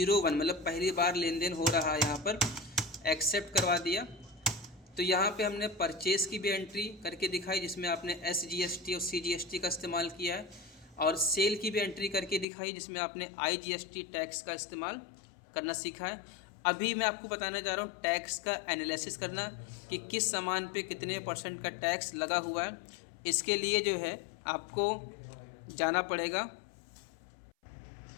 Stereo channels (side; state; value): right; drops out; at 12.5 s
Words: मतलब पहली बार लेन देन हो रहा है, यहाँ पर एक्सेप्ट करवा दिया। तो यहाँ पे हमने परचेस की भी एंट्री करके दिखाई, जिसमें आपने SGST और CGST का इस्तेमाल किया है, और सेल की भी एंट्री करके दिखाई जिसमें आपने IGST टैक्स का इस्तेमाल करना सीखा है। अभी मैं आपको बताने जा रहा हूँ टैक्स का एनालिसिस करना, कि किस सामान पे कितने % का टैक्स लगा हुआ है। इसके लिए जो है आपको जाना पड़ेगा।